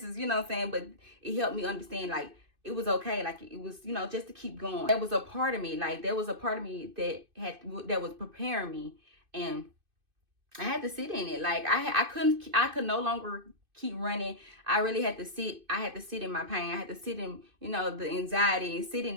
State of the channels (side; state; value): left; late; 2.5 ms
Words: is, you know what I'm saying? But it helped me understand, like, it was okay. Like, it was, just to keep going. There was a part of me, that was preparing me, and I had to sit in it. Like, I could no longer keep running. I really had to sit. I had to sit in my pain. I had to sit in, the anxiety, and sit in